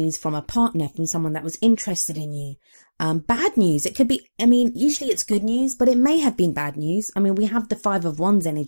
from a partner, from someone that was interested in you. Bad news. It could be, usually it's good news, but it may have been bad news. We have the 5 of Wands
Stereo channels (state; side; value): inverted; both; correlation -1.00